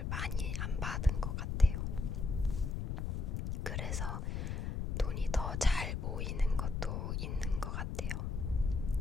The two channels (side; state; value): left; noise; rumble, 2 dB below the sound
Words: 많이 안 받은 것 같아요. 그래서 돈이 더 잘 모이는 것도 있는 것 같아요.